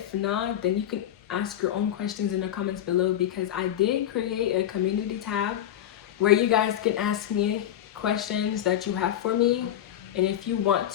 not, then you can ask your own questions in the comments below, because I did create a community tab where you guys can ask me questions that you have for me. And if you want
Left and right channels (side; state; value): right; quieter; 11.3 dB